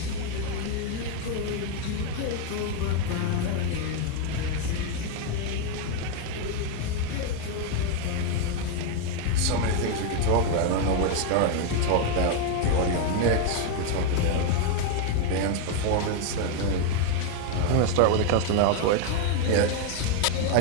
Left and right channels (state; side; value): different; both; correlation 0.01